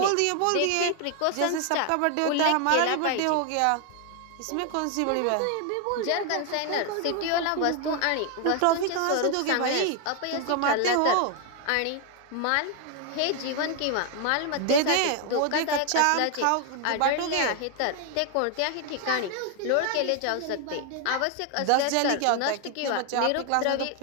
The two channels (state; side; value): different; both; correlation 0.00